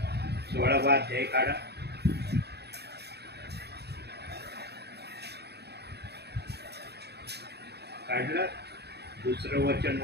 16वा अध्याय काढा. काढलं. दुसरं वचन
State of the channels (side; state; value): left; late; 0.48 ms